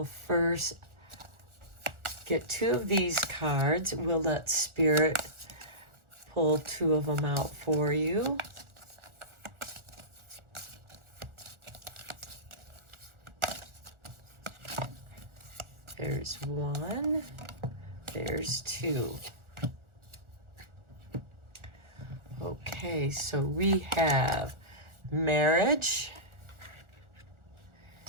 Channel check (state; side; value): late; left; 1.4 ms